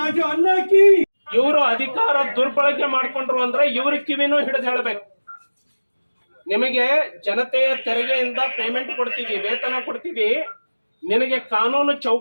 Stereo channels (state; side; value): inverted; both; correlation -1.00